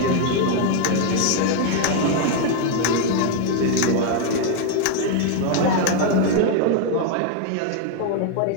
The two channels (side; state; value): both; different; correlation 0.01